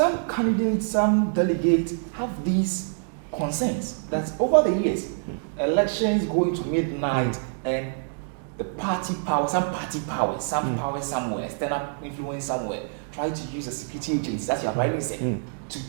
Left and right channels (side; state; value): left; silent; digital silence